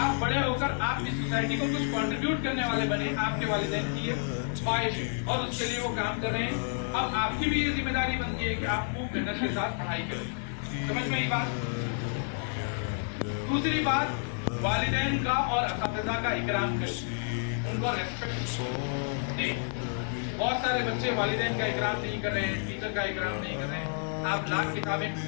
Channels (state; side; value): silent; right; 58 dB below the other